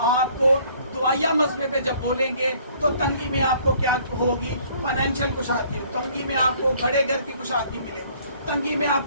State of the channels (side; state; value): both; inverted; correlation -0.59